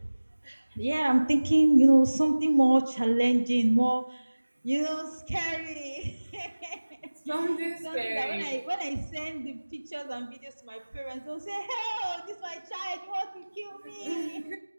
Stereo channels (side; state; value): both; inverted; correlation -1.00